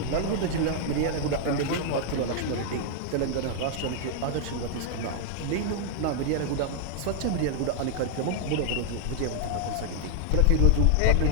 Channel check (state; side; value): different; both; correlation 0.00